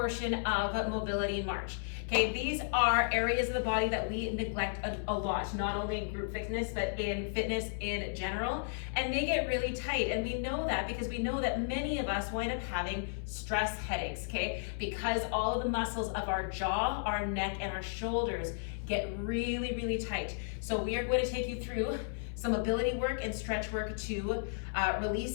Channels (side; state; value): right; silent; 55 dB below the other